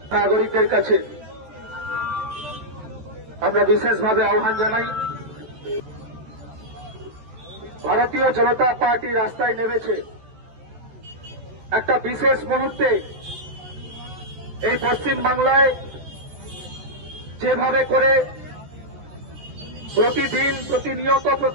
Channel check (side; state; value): left; late; 14 ms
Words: নাগরিকদের কাছে আমরা বিশেষভাবে আহ্বান জানাই। ভারতীয় জনতা পার্টি রাস্তায় নেমেছে একটা বিশেষ মুহূর্তে। এই পশ্চিম বাংলায় যেভাবে করে প্রতিদিন, প্রতিনিয়ত,